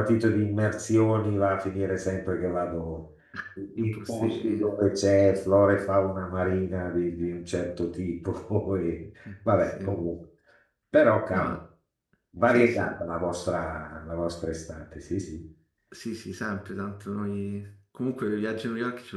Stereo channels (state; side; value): identical; both; correlation 1.00